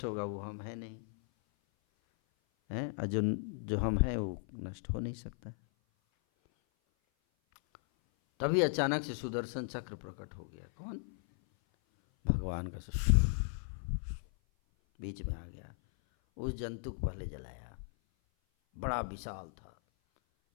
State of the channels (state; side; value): silent; right; 53 dB below the other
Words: होगा वो हम है नहीं, हैं? और जो हम हैं वो नष्ट हो नहीं सकता। तभी अचानक से सुदर्शन चक्र प्रकट हो गया। कौन? भगवान का बीच में आ गया, उस जंतु को पहले जलाया, बड़ा विशाल था,